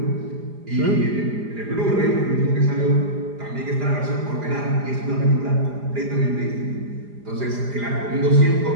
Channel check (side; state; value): left; late; 4.9 ms